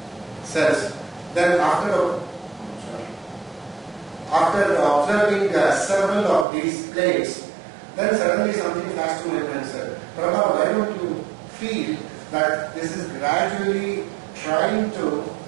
cells. Then after observing several of these plates, then suddenly something flashed to my mind, sir. Prabha, why don't you feel that this is gradually trying to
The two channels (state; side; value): drops out; left; at 6.5 s